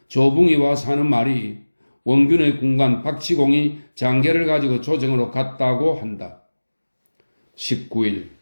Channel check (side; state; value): both; inverted; correlation -1.00